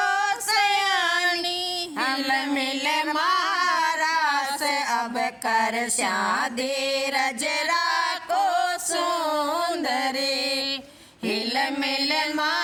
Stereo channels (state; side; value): identical; both; correlation 1.00